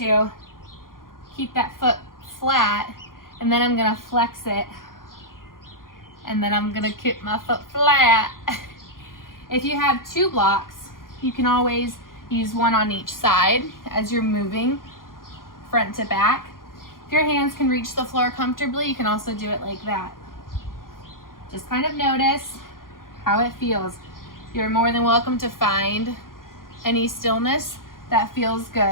keep that foot flat, and then I'm going to flex it, and then I'm going to keep my foot flat. If you have two blocks, you can always use one on each side as you're moving front to back. If your hands can reach the floor comfortably, you can also do it like that. Just kind of notice how it feels. You're more than welcome to find any stillness that feels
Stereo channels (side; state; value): right; late; 0.91 ms